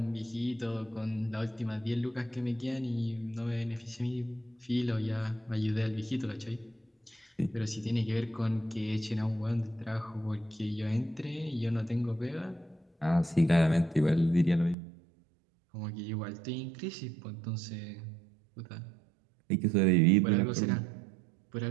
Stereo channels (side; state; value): left; drops out; at 14.8 s